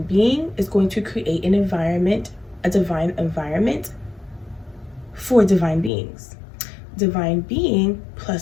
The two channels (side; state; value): right; drops out; at 5.9 s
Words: being is going to create an environment, a divine environment for divine beings. Divine being